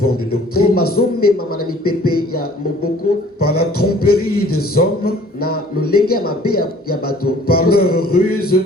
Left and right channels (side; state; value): both; normal; correlation 0.53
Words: de doctrine, par la tromperie des hommes, par leur ruse